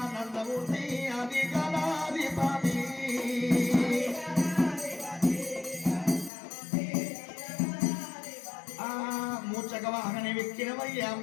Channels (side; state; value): right; drops out; at 6.3 s